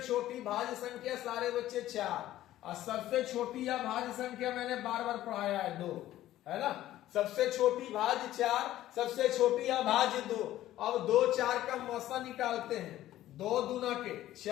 भाज्य संख्या सारे बच्चे 4 और सबसे छोटी अभाज्य संख्या मैंने बार बार पढ़ाया है 2, है ना। सबसे छोटी भाज्य 4, सबसे छोटी अभाज्य 2। अब 2 4 का मौसा निकालते हैं, 2 दूना के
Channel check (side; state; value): right; quieter; 14.0 dB